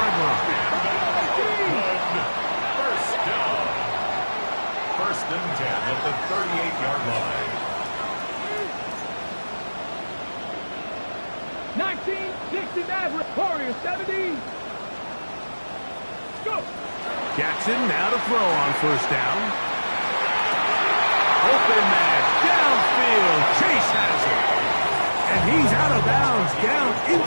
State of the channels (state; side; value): inverted; both; correlation -1.00